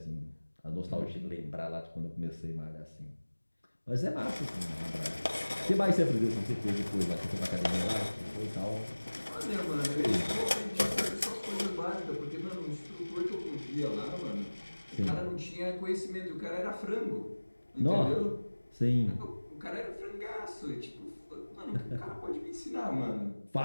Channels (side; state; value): both; inverted; correlation -1.00